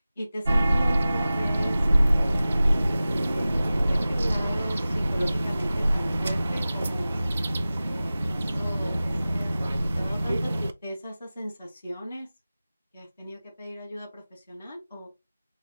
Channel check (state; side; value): inverted; both; correlation -0.97